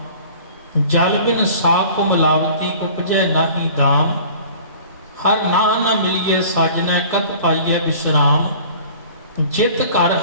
ਜਲ ਬਿਨ ਸਾਪ ਮਿਲਾਵਤੀ ਉਪਜੈ ਨਾਹੀ ਦਾਮ, ਹਰ ਨਾਹ ਨ ਮਿਲੀਏ ਸਾਜਨੈ ਕਤ ਪਾਈਐ ਵਿਸ਼ਰਾਮ, ਜਿਤ ਘਰ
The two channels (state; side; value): inverted; both; correlation -0.46